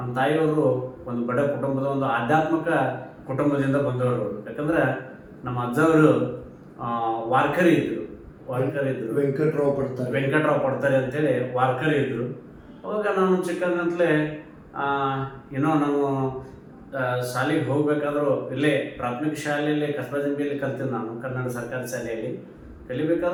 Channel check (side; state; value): both; identical; correlation 1.00